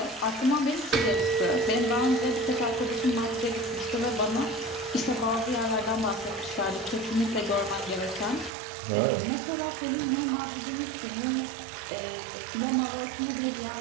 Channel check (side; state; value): left; drops out; at 8.5 s